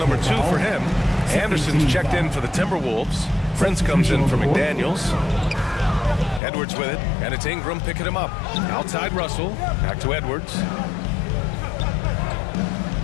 2 for him. Anderson's checked in for the Timberwolves. Prince comes in for McDaniels. Edwards with it, and it's Ingram picking him up. Outside Russell, back to Edwards.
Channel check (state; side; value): drops out; right; at 6.4 s